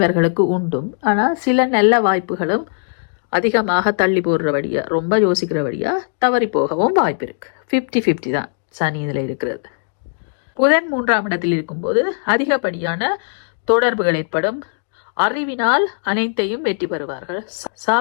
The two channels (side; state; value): right; silent; digital silence